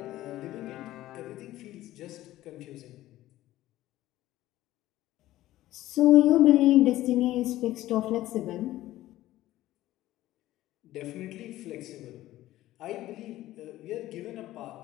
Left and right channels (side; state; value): right; quieter; 15.3 dB